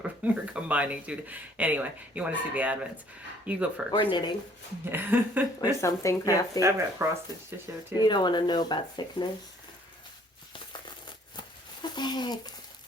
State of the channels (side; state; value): both; normal; correlation 0.60